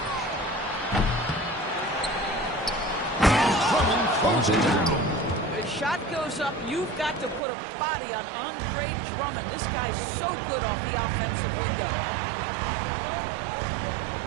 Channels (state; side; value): drops out; left; at 7.4 s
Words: Drummond closes it down. The shot goes up. You've got to put a body on Andre Drummond. This guy's so good off the offensive window.